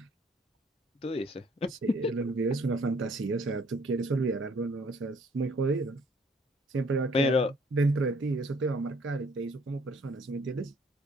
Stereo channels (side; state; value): both; normal; correlation 0.61